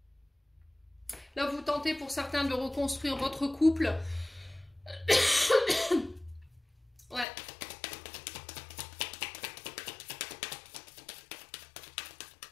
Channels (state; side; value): drops out; right; at 7.2 s